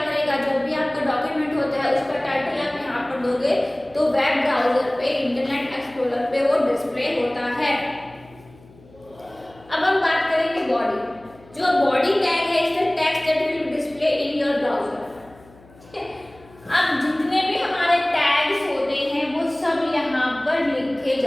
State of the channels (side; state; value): left; noise; hum, 25 dB below the sound